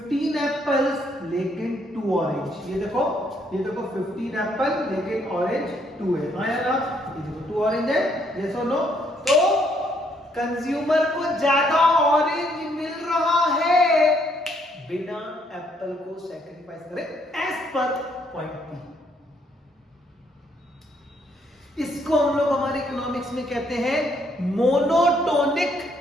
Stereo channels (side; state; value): both; normal; correlation 0.70